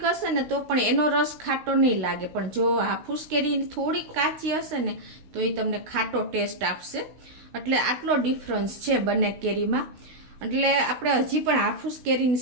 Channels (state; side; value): late; left; 16 ms